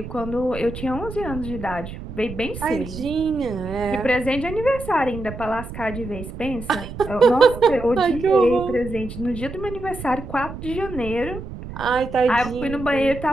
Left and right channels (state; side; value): noise; right; rumble, 11 dB below the sound